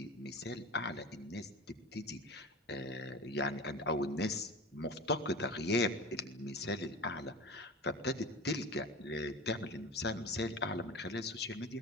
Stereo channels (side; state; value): both; normal; correlation 0.32